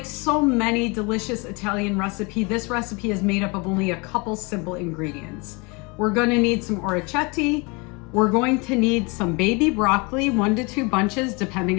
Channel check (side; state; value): right; quieter; 28.7 dB